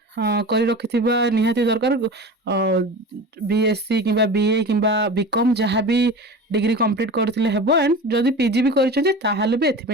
करि रखिथिबा निहाती दरकार बीएससी किबा बीए किबा बीकॉम जहाँ भी डिग्री कंप्लीट करथिले हेबो एंड जदि पीजी भी करिसथि ताहाले भी एथि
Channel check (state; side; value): normal; both; correlation 0.33